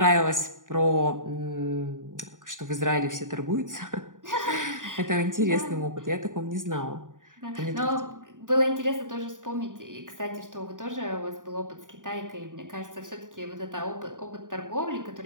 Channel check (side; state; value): left; late; 0.88 ms